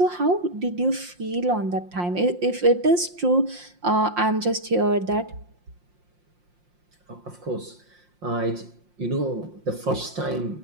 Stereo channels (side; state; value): left; late; 5.7 ms